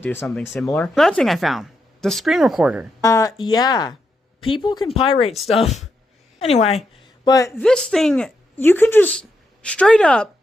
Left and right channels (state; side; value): normal; both; correlation 0.83